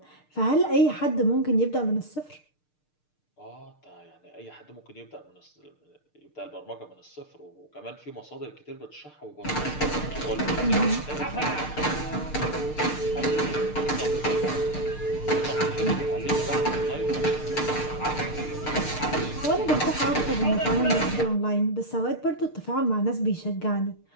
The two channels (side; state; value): right; late; 6.6 ms